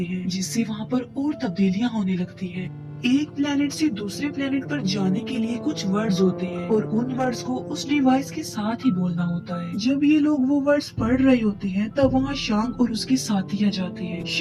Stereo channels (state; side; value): identical; both; correlation 1.00